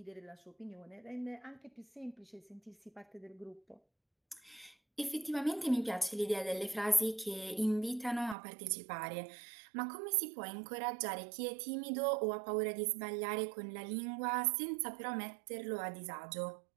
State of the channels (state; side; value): drops out; left; at 8.3 s